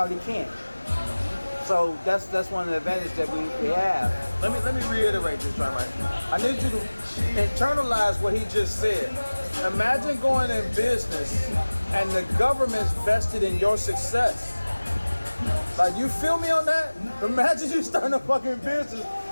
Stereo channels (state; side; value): inverted; both; correlation -1.00